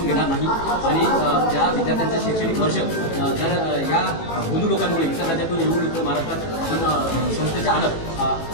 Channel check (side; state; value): right; late; 18 ms